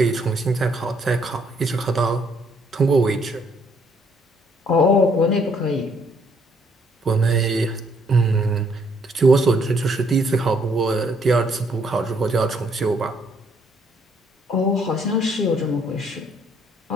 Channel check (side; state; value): both; normal; correlation 0.67